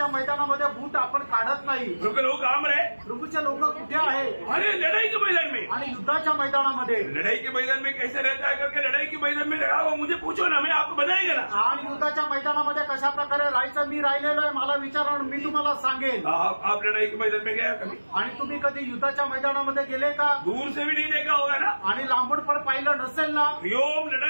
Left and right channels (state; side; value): inverted; both; correlation -1.00